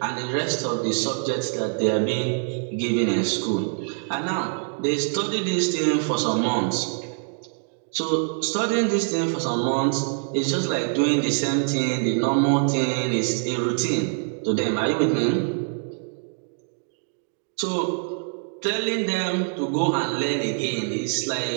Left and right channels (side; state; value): left; silent; 58 dB below the other